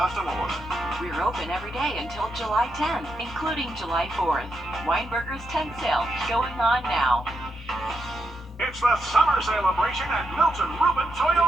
order. We're open every day until July 10th, including July 4th. Weinberger's Tent Sale going on now. It's the summer celebration at Milton Rubin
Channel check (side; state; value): both; normal; correlation 0.83